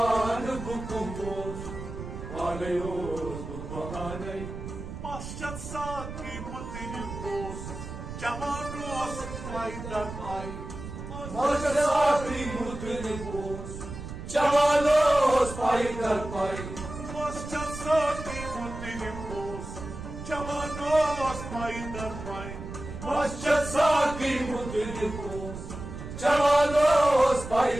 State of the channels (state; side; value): noise; right; rumble, 9 dB below the sound